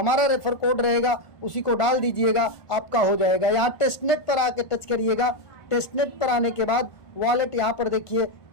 रेफर कोड रहेगा उसी को डाल दीजिएगा, आपका हो जाएगा। यहाँ टेस्टनेट पर आके टच करिएगा। टेस्टनेट पर आने के बाद वॉलेट यहाँ पर देखिए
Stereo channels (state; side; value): late; right; 1.4 ms